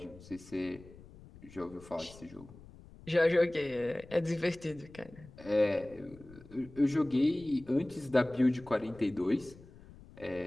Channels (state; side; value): noise; left; rumble, 20 dB below the sound